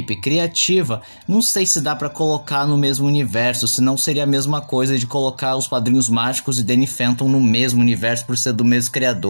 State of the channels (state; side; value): inverted; both; correlation -1.00